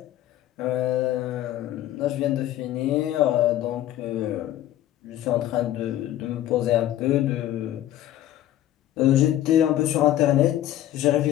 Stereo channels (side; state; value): right; quieter; 13.1 dB